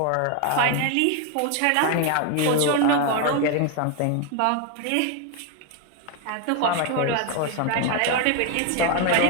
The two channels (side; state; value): both; different; correlation 0.01